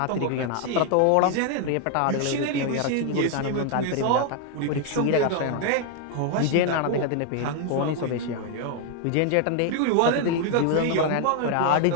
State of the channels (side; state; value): both; different; correlation 0.00